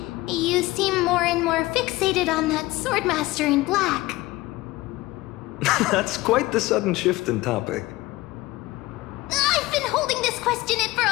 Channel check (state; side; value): quieter; right; 19.2 dB